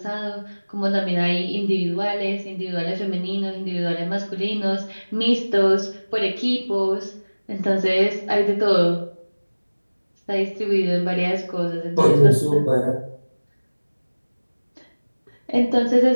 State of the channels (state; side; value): inverted; both; correlation -1.00